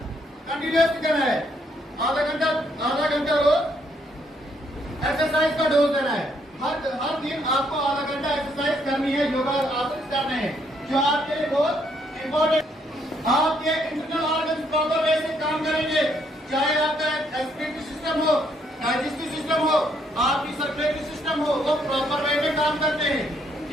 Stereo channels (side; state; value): both; normal; correlation 0.71